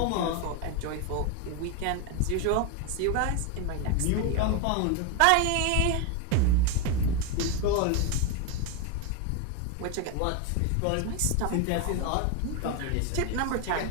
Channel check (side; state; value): both; different; correlation 0.02